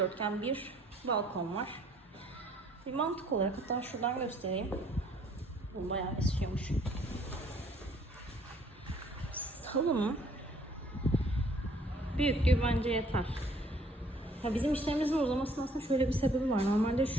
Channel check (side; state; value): both; normal; correlation 0.60